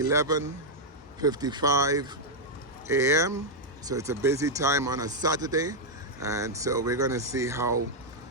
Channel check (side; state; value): both; normal; correlation -0.02